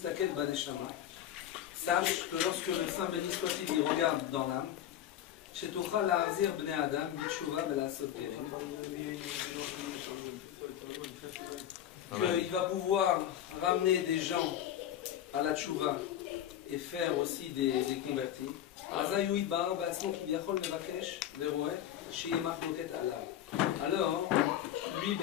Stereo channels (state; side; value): quieter; right; 11.0 dB